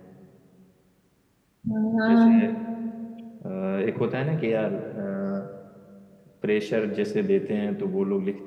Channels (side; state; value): both; identical; correlation 1.00